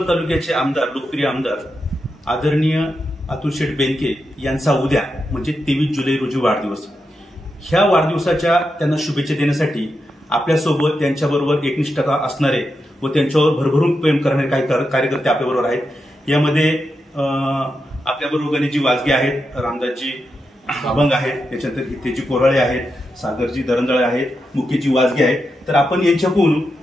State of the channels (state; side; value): normal; both; correlation 0.87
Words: तालुक्याचे आमदार, लोकप्रिय आमदार आदरणीय अतुल शेठ बेनके यांचा उद्या म्हणजे 23 जुलै रोजी वाढदिवस. ह्या वाढदिवसाच्या त्यांना शुभेच्छा देण्यासाठी आपल्यासोबत त्यांच्याबरोबर एकनिष्ठता असणारे व त्यांच्यावर भरभरून प्रेम करणारे काही कार्यकर्ते आपल्याबरोबर आहेत. यामध्ये आपल्याबरोबर गणेशजी वाजगे आहेत, रामदासजी अभंग आहेत, त्याच्यानंतर हितेजी कोराळे आहेत, सागरजी दरंजळे आहेत, मुकेशजी वाजगे आहेत. तर आपण यांच्याकडून